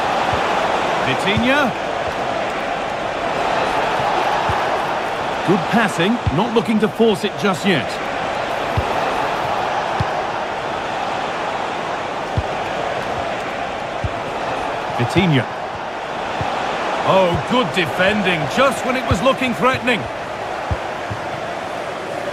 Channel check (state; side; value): identical; both; correlation 1.00